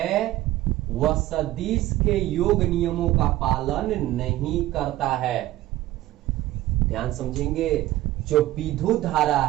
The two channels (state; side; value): quieter; left; 15.7 dB